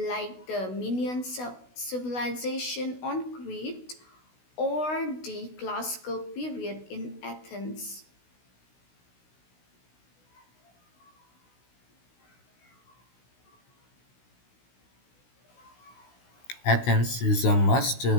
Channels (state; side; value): late; right; 16 ms